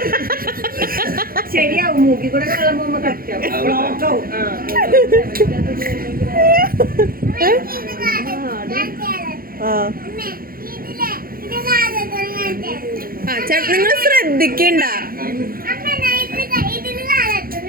ശരിയാവും. മൂക്കി കൂടെ വെള്ളം പോകുമ്പോ കറക്റ്റാവും. നിങ്ങൾ ശ്രദ്ധിക്കണ്ട.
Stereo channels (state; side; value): late; left; 0.42 ms